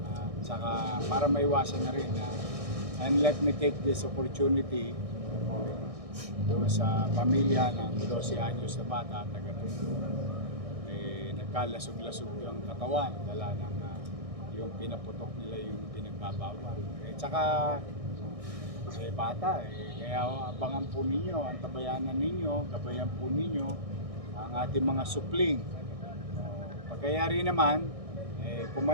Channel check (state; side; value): late; left; 1.6 ms